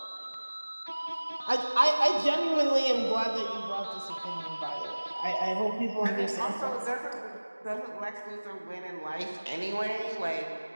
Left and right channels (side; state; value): both; inverted; correlation -1.00